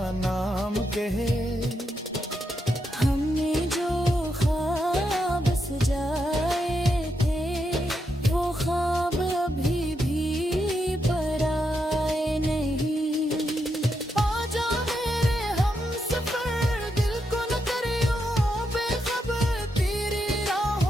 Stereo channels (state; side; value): normal; both; correlation 0.83